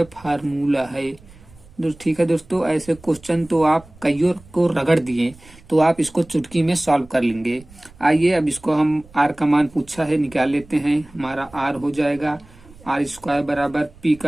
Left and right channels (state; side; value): noise; right; rumble, 24 dB below the sound